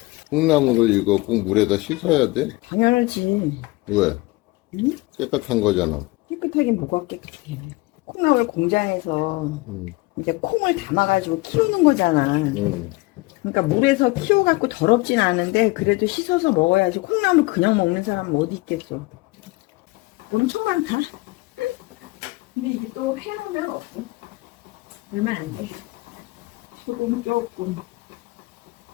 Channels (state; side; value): quieter; right; 22.5 dB